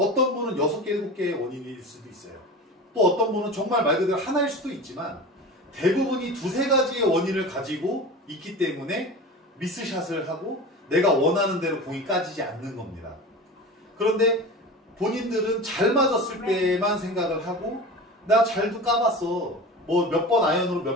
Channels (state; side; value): normal; both; correlation 0.33